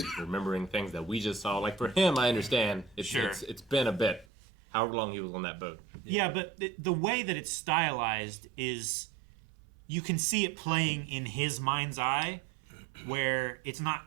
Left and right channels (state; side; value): drops out; left; at 4.2 s